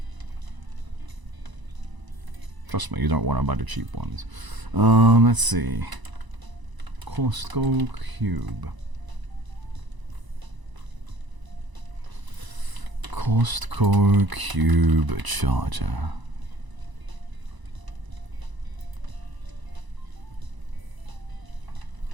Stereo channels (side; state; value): left; late; 1.0 ms